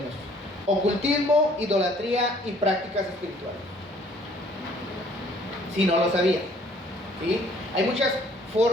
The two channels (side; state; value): both; normal; correlation 0.59